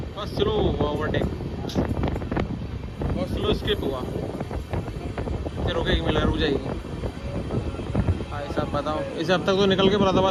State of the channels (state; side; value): identical; both; correlation 1.00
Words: बस स्लो हुआ ओवरटेक, बहुत स्लो स्किप हुआ, फिर रुकेगी, मिला रुक जाएगी। साहब बताओ, इसे अब तक तो निकल के